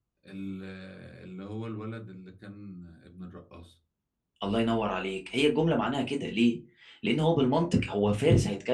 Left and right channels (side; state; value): both; identical; correlation 1.00